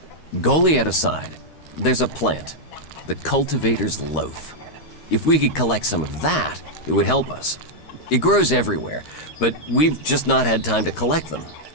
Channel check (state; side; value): late; right; 13 ms